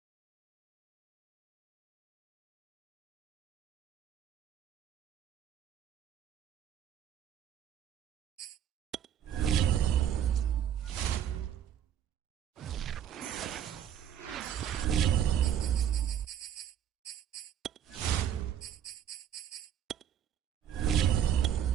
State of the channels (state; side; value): quieter; left; 9.6 dB